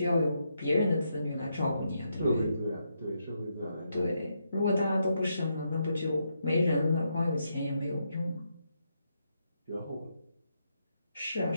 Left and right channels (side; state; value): both; inverted; correlation -0.80